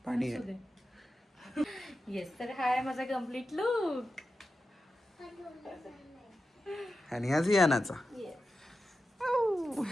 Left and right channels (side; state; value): both; normal; correlation 0.91